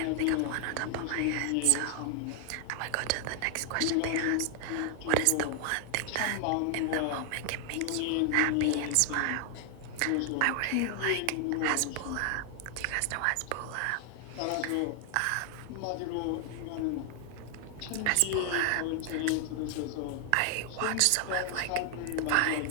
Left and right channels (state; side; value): different; both; correlation 0.00